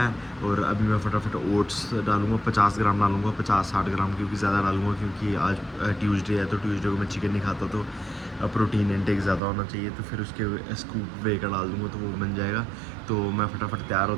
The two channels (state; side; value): drops out; left; at 9.4 s